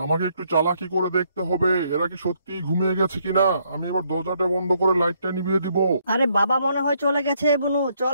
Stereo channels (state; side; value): inverted; both; correlation -0.71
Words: আমাকে একটু চালাকি করে দেখতে হবে এরা কি সত্যি ঘুমিয়ে গেছে কিনা। আমি এবার দরজাটা বন্ধ করে লাইটটা নিভিয়ে দিব। আরে বাবা মনে হয় চলে গেছে বনু,